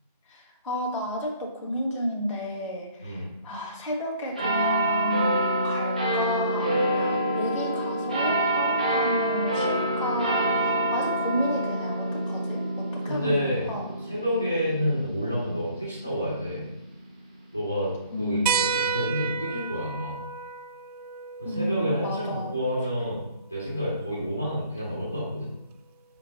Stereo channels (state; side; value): inverted; both; correlation -0.56